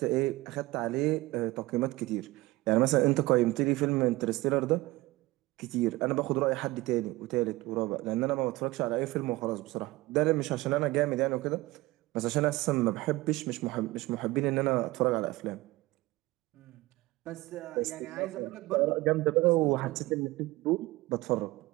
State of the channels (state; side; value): quieter; left; 19.7 dB